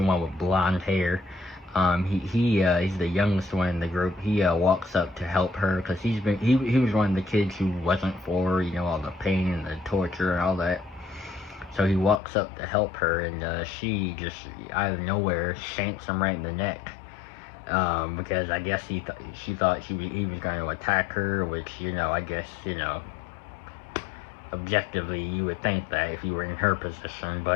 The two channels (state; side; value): drops out; right; at 12.2 s